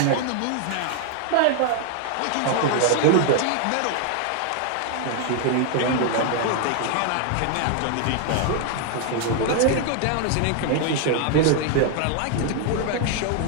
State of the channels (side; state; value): both; different; correlation 0.00